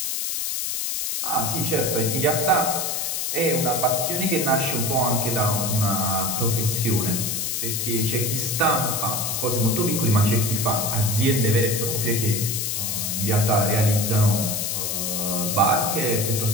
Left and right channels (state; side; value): noise; left; hiss, 1 dB below the sound